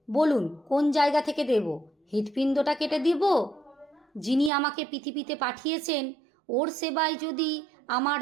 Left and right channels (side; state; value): left; drops out; at 4.5 s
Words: বলুন কোন জায়গা থেকে দেব? হৃৎপিণ্ডটা কেটে দিব? যিনি আমাকে পৃথিবীতে পাঠিয়েছেন ওর সেবায় যদি আমার